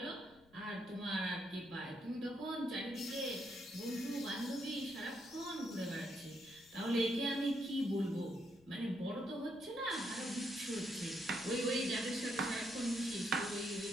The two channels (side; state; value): left; noise; rumble, 28 dB below the sound